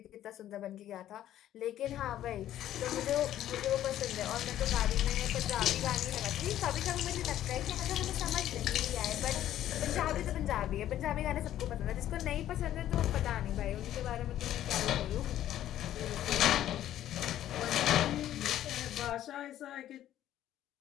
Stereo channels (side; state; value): right; quieter; 12.2 dB